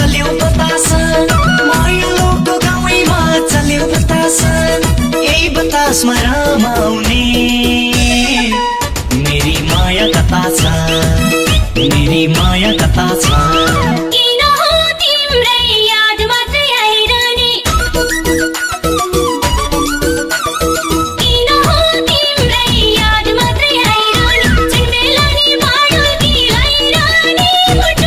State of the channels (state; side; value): identical; both; correlation 1.00